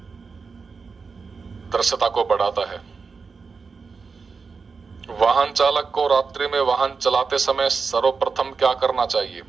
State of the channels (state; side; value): quieter; left; 4.9 dB